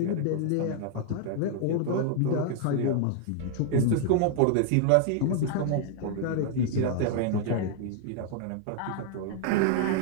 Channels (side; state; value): both; different; correlation 0.00